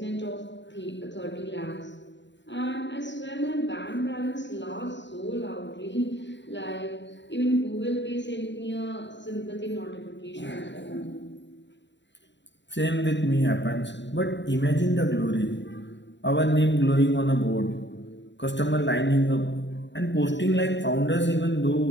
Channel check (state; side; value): late; right; 0.52 ms